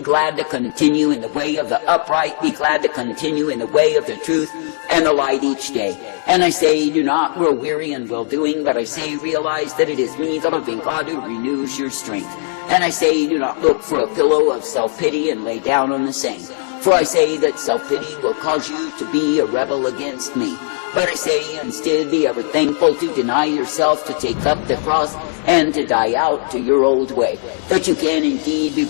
glad to continue in the way of the upright, be glad to continue in the way of the truth and the light each day. And I say, do not grow weary in well-doing, but I say, realize that it is me, the living God, who renews your strength. And I say, do not look for a pillow of self-pity and lay down on the same. For I say that self-pity will cause you to be a rebel against me. But I say, instead, be ever thankful to deny yourself, to take up the cross, and to die out to your old way, that you can indeed be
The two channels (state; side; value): silent; right; 67 dB below the other